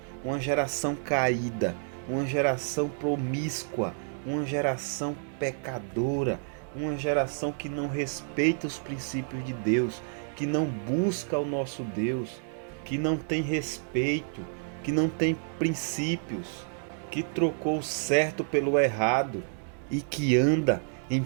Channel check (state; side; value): silent; left; 58 dB below the other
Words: uma geração caída, uma geração promíscua, uma geração pecadora, uma geração que não respeita os princípios de Deus, que não busca o nosso Deus, que não tem respeito, que não tem princípios, que trocou o certo pelo errado e que anda em